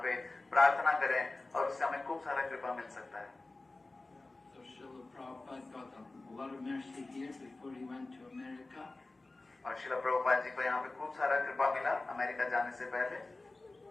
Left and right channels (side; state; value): right; quieter; 3.2 dB